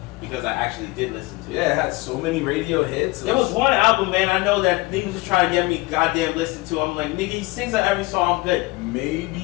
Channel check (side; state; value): right; quieter; 22.6 dB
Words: because I actually did listen to it. Yeah, it had so many radio hits. There was one album, man. I know that niggas was trying to get me goddamn listen to. I'm like, nigga, he sings on every song. I'm good.